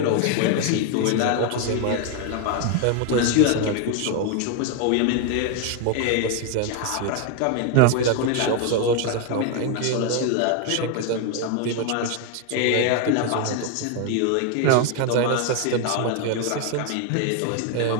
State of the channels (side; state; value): both; different; correlation 0.01